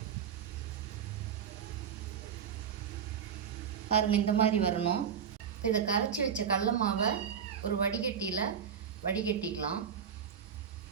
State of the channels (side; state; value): left; quieter; 7.7 dB